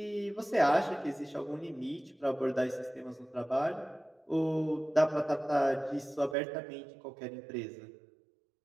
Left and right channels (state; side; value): drops out; left; at 6.4 s